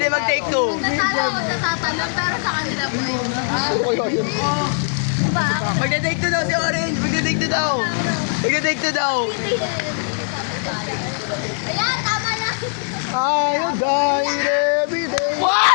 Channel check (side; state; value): right; silent; 66 dB below the other